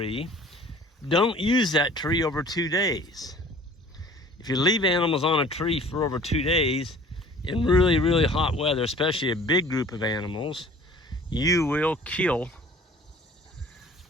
Don't use that tree over 2 days. If you leave animals on a tree for over 2 days in really, really hot weather, especially a big group of animals, you will kill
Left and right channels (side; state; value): both; normal; correlation 0.48